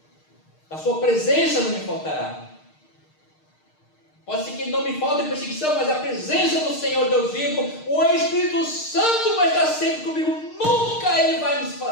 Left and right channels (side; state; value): right; late; 6.5 ms